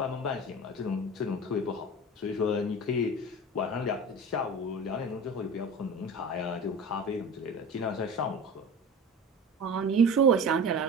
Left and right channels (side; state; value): both; normal; correlation 0.34